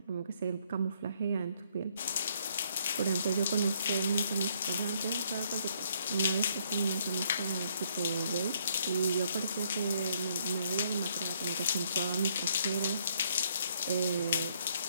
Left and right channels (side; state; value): both; inverted; correlation -0.69